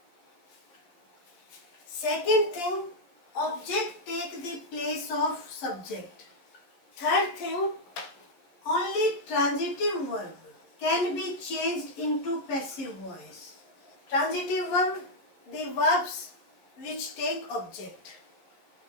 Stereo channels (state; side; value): late; right; 12 ms